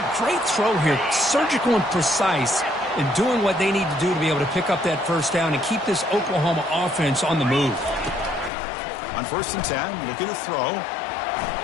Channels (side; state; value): right; drops out; at 8.5 s